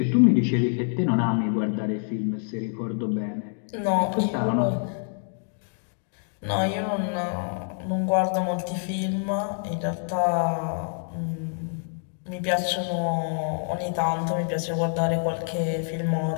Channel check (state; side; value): silent; right; 61 dB below the other